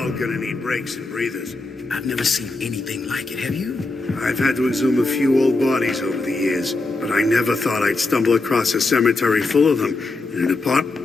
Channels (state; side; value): quieter; right; 3.3 dB